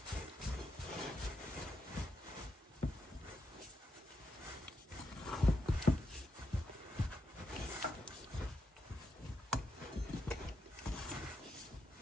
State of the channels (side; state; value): both; normal; correlation 0.82